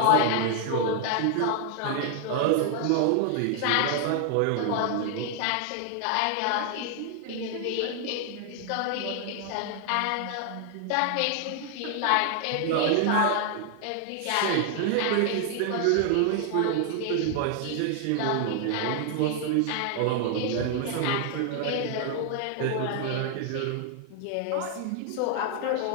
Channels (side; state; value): both; different; correlation 0.00